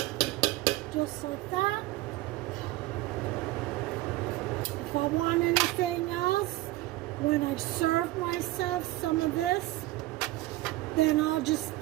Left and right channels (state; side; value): quieter; left; 17.7 dB